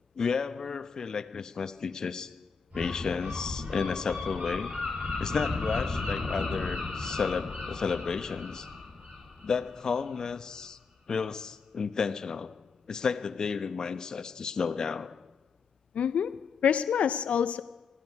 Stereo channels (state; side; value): quieter; right; 5.3 dB